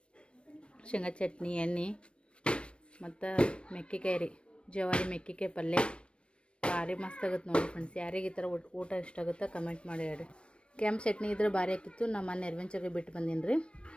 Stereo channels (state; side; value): late; right; 0.058 ms